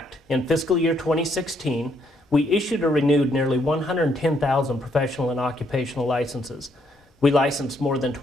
in fiscal year 2016, we issued or renewed nearly 110,000 professional and occupational licenses. We licensed more than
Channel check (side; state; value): both; normal; correlation 0.72